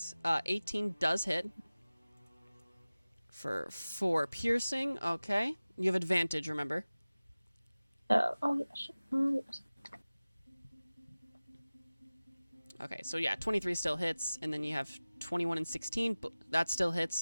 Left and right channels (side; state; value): both; inverted; correlation -0.98